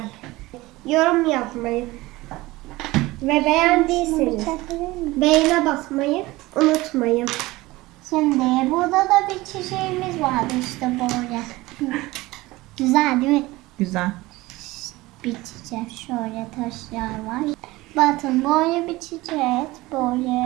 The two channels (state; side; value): quieter; left; 19.8 dB